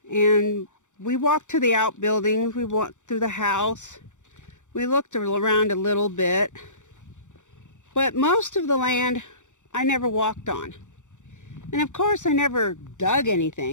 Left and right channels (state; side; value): late; right; 0.85 ms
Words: and we walked to the outbuildings, we walked through the house, we looked around a little bit, but most of the land I never walked on. And of course I never dug